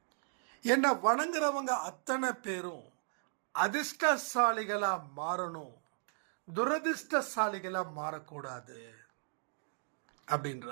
என்னை வணங்குறவங்க அத்தனை பேரும் அதிர்ஷ்டசாலிகளா மாறணும், துரதிர்ஷ்டசாலிகளா மாறக்கூடாது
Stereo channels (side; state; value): left; silent; digital silence